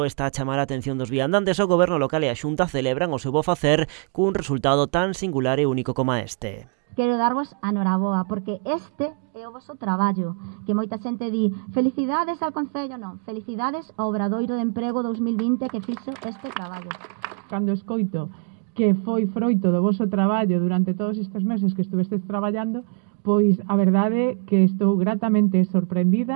está a chamar a atención dos viandantes, o Goberno local e a Xunta celebran o seu bo facer cun resultado tan singular e único como este. Quero darvos a noraboa, porque este é o vosso traballo, que moita xente di felicidades ao Concello, non, felicidades ao Obradoiro de Emprego 2020 que fixo este traballo. Cando escoito que foi froito do voso traballo durante todos estes meses que estuvestes traballando, pois a verdade que estou gratamente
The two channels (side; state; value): left; quieter; 40.0 dB